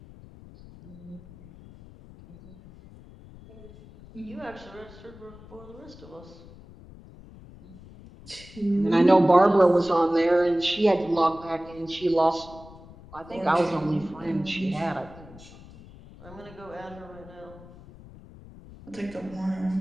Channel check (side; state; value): left; noise; rumble, 19 dB below the sound